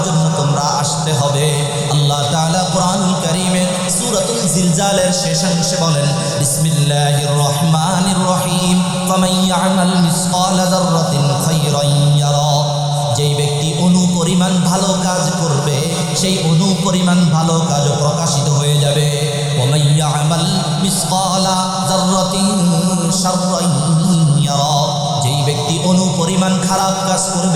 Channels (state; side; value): identical; both; correlation 1.00